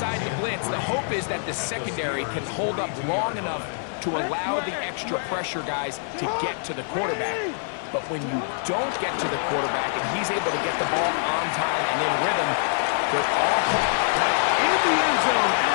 to blitz, the hope is that the secondary can hold up long enough to allow the extra pressure guys to get to the quarterback. But when you don't get to the quarterback and he's able to get the ball on time and in rhythm, they're all in the end zone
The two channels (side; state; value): right; silent; 62 dB below the other